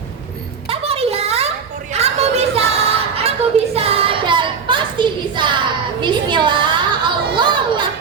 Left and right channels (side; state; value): left; quieter; 6.0 dB